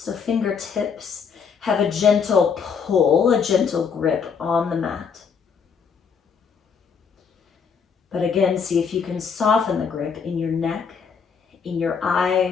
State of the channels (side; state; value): right; quieter; 6.2 dB